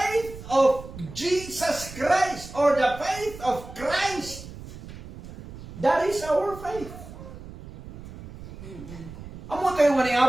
of Jesus Christ, or the faith of Christ, that is our faith. Amo tayo nga ni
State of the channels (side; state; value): right; noise; rumble, 14 dB below the sound